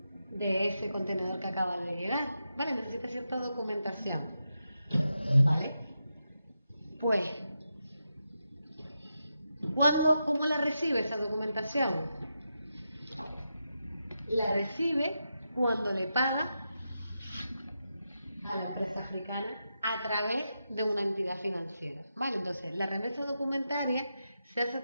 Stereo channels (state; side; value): inverted; both; correlation -0.87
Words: de ese contenedor que acaba de llegar, ¿vale? Necesita cierta documentación, ¿vale? Pues, ¿cómo la recibe esa documentación? La recibe cuando le paga a la empresa africana a través de una entidad financiera, ¿vale? Entonces, la remesa documentaria se hace a